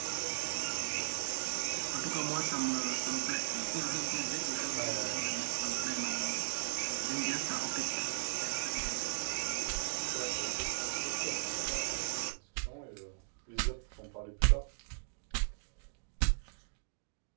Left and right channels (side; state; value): left; silent; 53 dB below the other